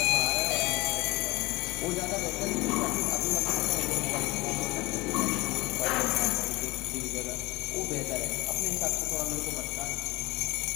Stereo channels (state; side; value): quieter; right; 21.8 dB